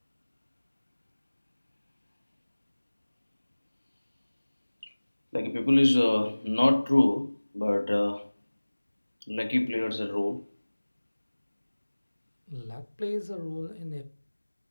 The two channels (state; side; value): inverted; both; correlation -1.00